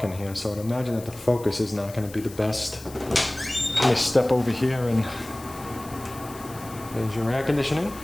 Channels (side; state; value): left; noise; hiss, 18 dB below the sound